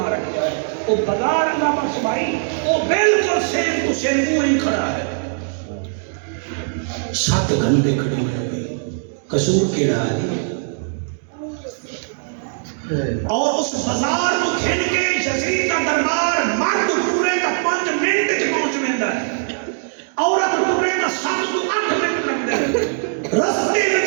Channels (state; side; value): silent; left; digital silence